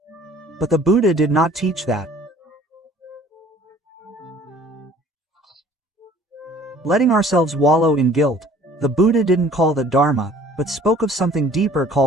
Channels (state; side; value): normal; both; correlation 0.53